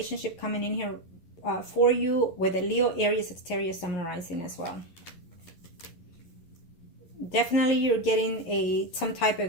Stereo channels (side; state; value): right; late; 11 ms